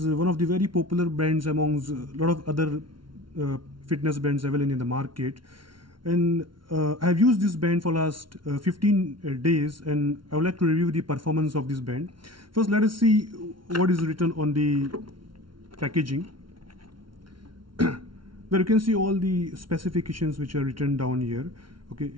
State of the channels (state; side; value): late; left; 0.73 ms